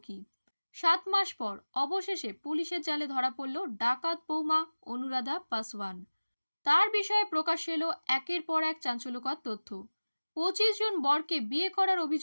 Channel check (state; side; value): inverted; both; correlation -1.00